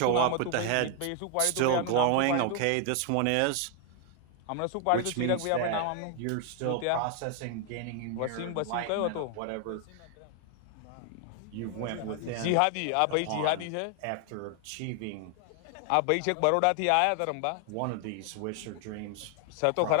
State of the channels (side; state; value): both; different; correlation 0.00